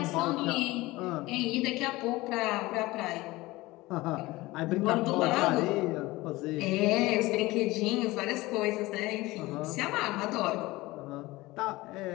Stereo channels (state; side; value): quieter; right; 20.0 dB